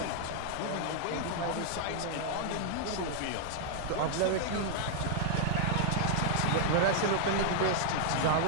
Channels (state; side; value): different; both; correlation 0.00